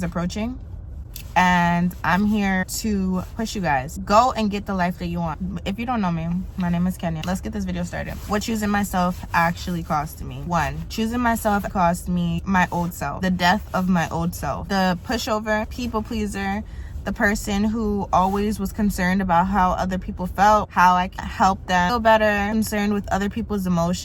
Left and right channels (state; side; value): identical; both; correlation 1.00